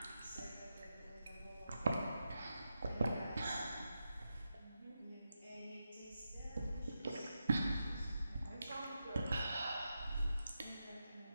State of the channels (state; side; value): inverted; both; correlation -0.88